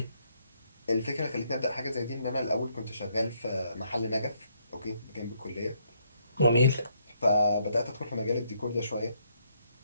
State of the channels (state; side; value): inverted; both; correlation -0.73